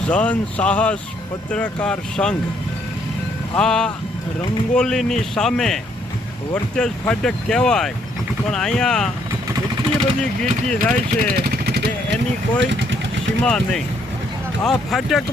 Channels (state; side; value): normal; both; correlation 0.69